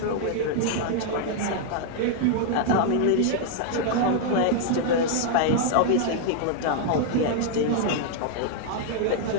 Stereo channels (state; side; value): different; both; correlation 0.00